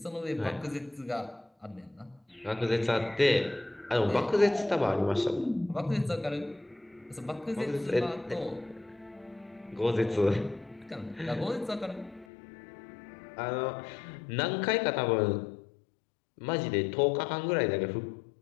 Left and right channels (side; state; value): right; drops out; at 12.2 s